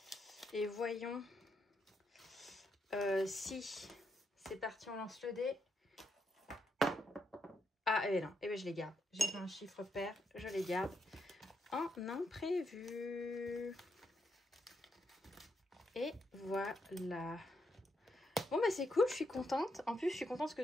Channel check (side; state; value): both; normal; correlation 0.80